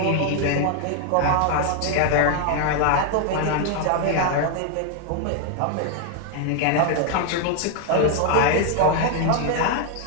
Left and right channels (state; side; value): different; both; correlation 0.00